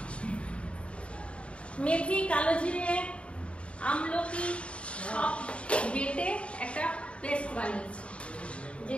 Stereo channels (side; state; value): right; late; 0.060 ms